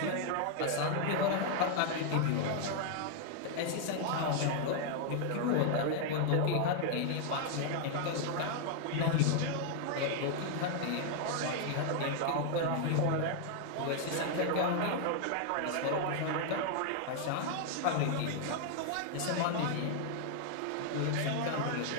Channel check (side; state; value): both; different; correlation 0.00